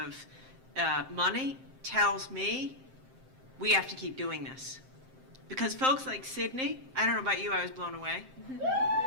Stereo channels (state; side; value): late; left; 7.6 ms